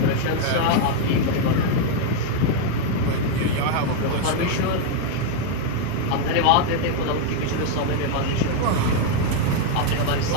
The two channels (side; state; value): both; different; correlation 0.00